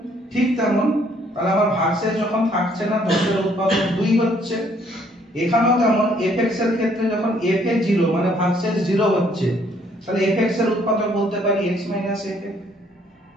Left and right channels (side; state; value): both; normal; correlation 0.65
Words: ঠিক তেমন তাহলে আমার ভাগশেষ যখন থাকছে না 10 এর উৎপাদক 2 হচ্ছে, এখানেও তেমন fx এর ক্ষেত্রে যখন f এ 0 মানে ভাগশেষ 0 হচ্ছে, তাহলে fx এর উৎপাদক বলতে পারি x f।